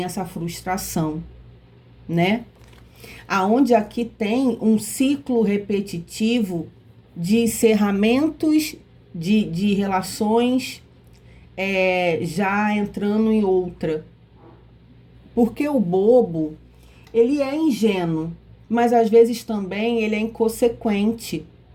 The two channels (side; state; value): both; identical; correlation 1.00